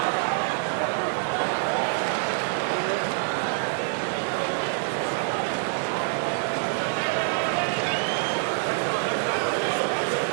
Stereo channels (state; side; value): silent; left; digital silence